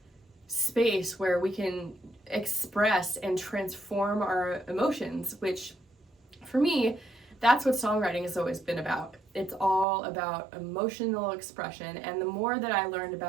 space where we can express and transform our emotions, which for me, that's what songwriting has always been about. It's all about emotional expression, and the more that I learned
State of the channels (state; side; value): drops out; left; at 9.9 s